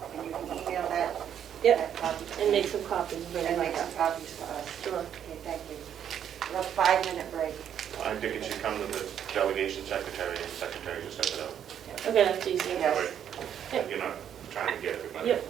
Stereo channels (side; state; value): left; quieter; 9.3 dB